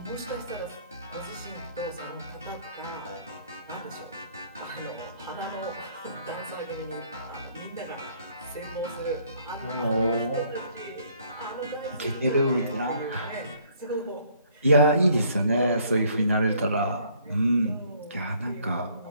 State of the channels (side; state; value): both; inverted; correlation -0.63